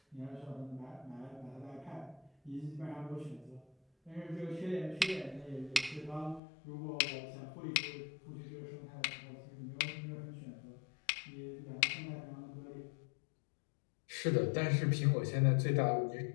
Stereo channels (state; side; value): drops out; right; at 6.4 s